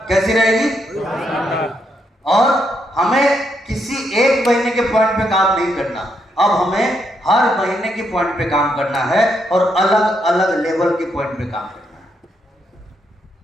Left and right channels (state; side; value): normal; both; correlation 0.78